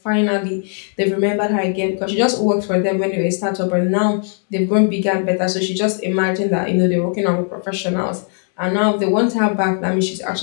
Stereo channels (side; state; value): right; silent; 57 dB below the other